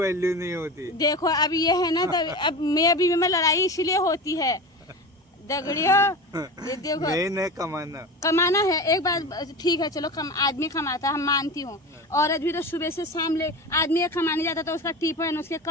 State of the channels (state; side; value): normal; both; correlation 0.28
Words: नहीं होती। देखो अब ये है ना, तब अब मैं लड़ाई इसीलिए होती है दगड़ियों। ये देखो मेन है कमाना। कमाना है, एक बात ठीक है, चलो आदमी कमाता है, हम मानती हूँ। औरत भी तो सुबह से शाम ले, आदमी एक कमाने जाता तो उसका टिफिन, उसके